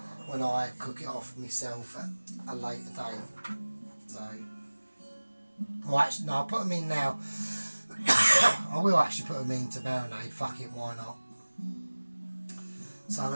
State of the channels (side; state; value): both; inverted; correlation -1.00